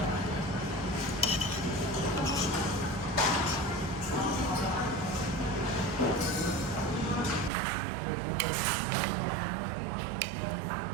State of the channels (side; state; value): left; drops out; at 7.5 s